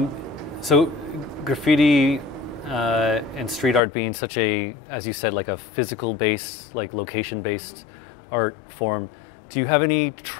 So graffiti and street art being such a, as you said, like a physical based, like location based art form, do you have any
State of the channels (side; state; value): right; drops out; at 3.8 s